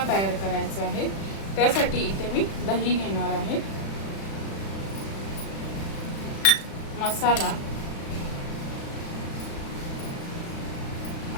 तयार करायचा आहे। त्यासाठी इथे मी दही घेणार आहे, मसाला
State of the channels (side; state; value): right; late; 36 ms